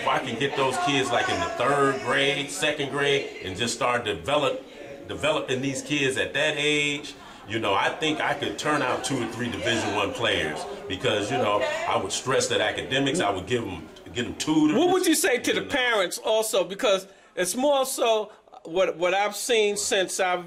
I can get those kids like in the 3rd grade, 2nd grade, and just start developing these kids at that age, I think I could turn out 2 or 3 Division I players because, I would stress that academics, I would get them tutors. What would you say to the parents also? Because it's more so what I've seen since I've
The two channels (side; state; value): both; identical; correlation 1.00